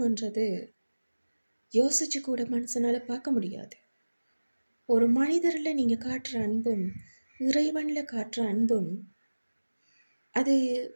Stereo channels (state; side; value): inverted; both; correlation -1.00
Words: யோசிச்சு கூட மனுஷனால் பார்க்க முடியாது. ஒரு மனிதரில் நீங்கள் காட்டுற அன்பும் இறைவனில் காட்டுற அன்பும் அது